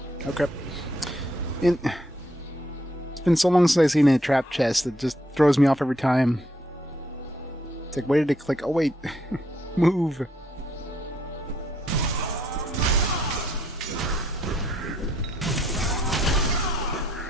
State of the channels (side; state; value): both; normal; correlation 0.71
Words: Okay. It's been so long since I've seen a trap chest that just throws me off every time. It's like, why did it click? Oh wait, move.